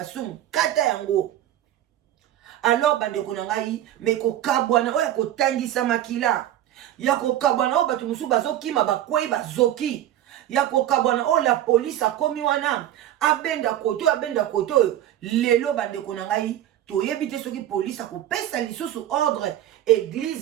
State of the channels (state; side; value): quieter; left; 12.4 dB